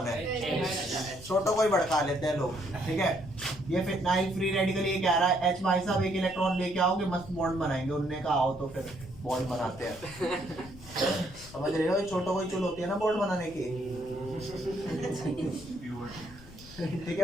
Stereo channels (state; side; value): noise; left; rumble, 19 dB below the sound